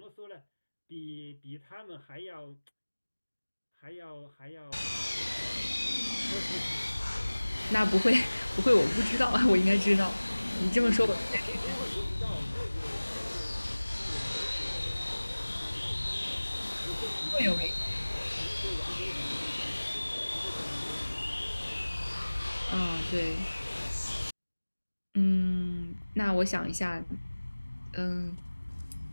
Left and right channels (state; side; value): inverted; both; correlation -1.00